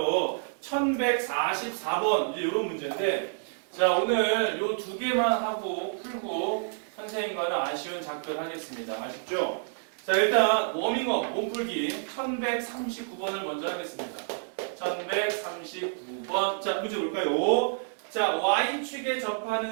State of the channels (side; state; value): left; silent; 59 dB below the other